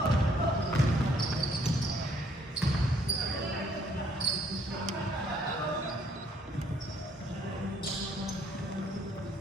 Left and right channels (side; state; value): both; normal; correlation 0.65